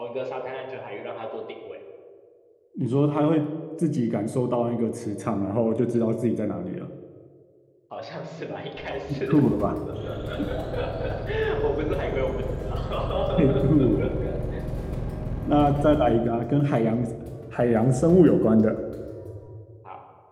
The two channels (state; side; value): identical; both; correlation 1.00